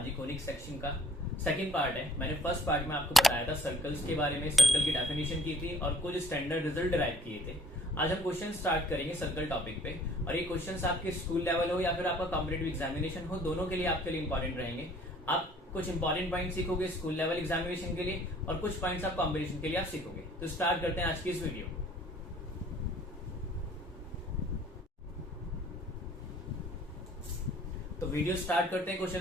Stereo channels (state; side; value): normal; both; correlation 0.56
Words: ये conic section का second part है। मैंने फर्स्ट पार्ट में आपको बताया था सर्कल्स के बारे में, सर्कल की डेफिनेशन की थी और कुछ स्टैंडर्ड रिजल्ट डिराइव किए थे। आज हम क्वेश्चन स्टार्ट करेंगे सर्कल टॉपिक पे, और ये क्वेश्चंस आपके स्कूल लेवल हो या फिर आपका कॉम्पिटिटिव एग्जामिनेशन हो, दोनों के लिए आपके लिए इंपॉर्टेंट रहेंगे। आप कुछ इंपॉर्टेंट पॉइंट सीखोगे स्कूल लेवल एग्जामिनेशन के लिए और कुछ पॉइंट्स आप कॉम्पिटिशन के लिए आप सीखोगे। तो स्टार्ट करते हैं आज की इस वीडियो। तो वीडियो स्टार्ट करते हैं